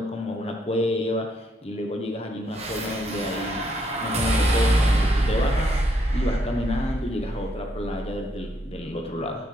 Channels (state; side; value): normal; both; correlation 0.74